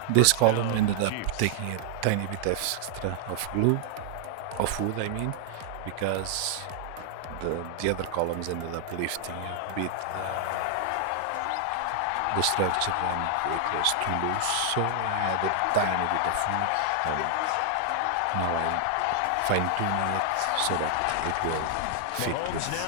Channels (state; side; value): different; both; correlation 0.00